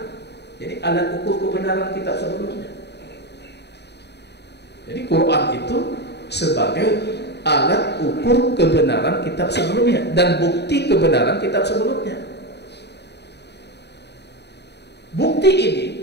Jadi alat ukur kebenaran kitab sebelumnya. Jadi Quran itu sebagai alat ukur kebenaran kitab sebelumnya dan bukti kebenaran kitab sebelumnya. Bukti ini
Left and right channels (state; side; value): late; right; 0.49 ms